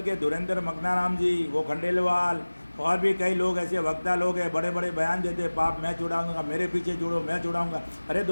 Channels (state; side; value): inverted; both; correlation -1.00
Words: के धुरेंद्र मकनाराम जी, वो खंडेलवाल और भी कई लोग ऐसे वक्ता लोग हैं, बड़े बड़े बयान देते, पाप मैं छुड़ाऊंगा, मेरे पीछे जुड़ो, मैं छुड़ाऊंगा। अरे